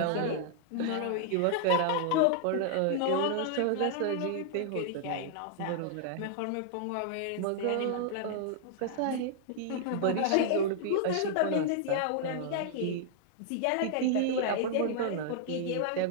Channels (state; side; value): different; both; correlation -0.01